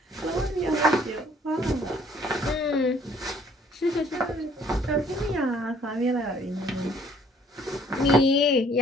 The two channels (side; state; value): both; normal; correlation 0.60